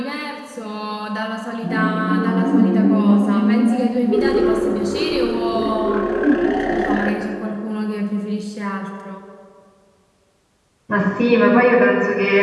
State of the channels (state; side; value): identical; both; correlation 1.00